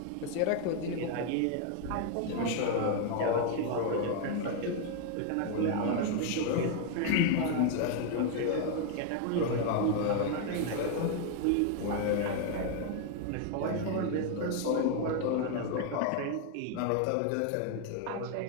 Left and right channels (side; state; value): both; different; correlation 0.00